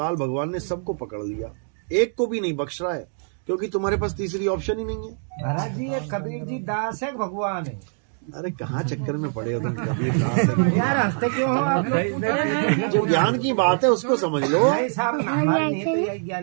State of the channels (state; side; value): silent; left; 56 dB below the other